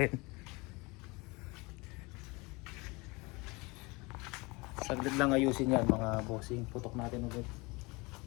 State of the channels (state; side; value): quieter; right; 25.8 dB